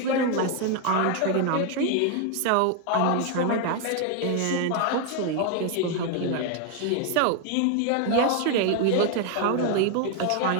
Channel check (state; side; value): different; both; correlation 0.00